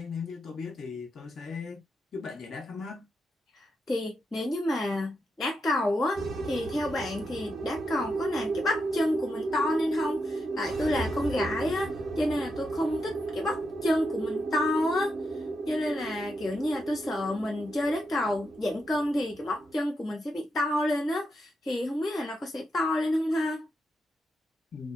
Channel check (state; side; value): normal; both; correlation 0.85